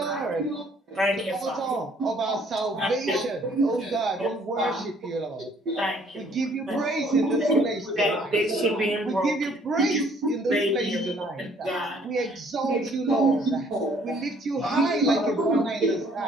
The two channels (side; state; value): both; normal; correlation 0.61